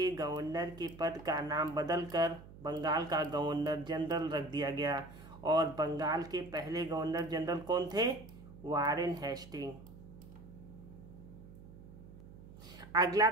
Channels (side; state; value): right; noise; hum, 17 dB below the sound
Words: गवर्नर के पद का नाम बदलकर बंगाल का गवर्नर जनरल रख दिया गया और बंगाल के पहले गवर्नर जनरल कौन थे? Warren Hastings. अगला